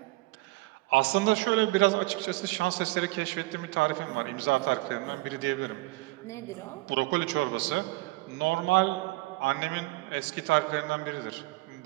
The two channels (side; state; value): left; quieter; 22.0 dB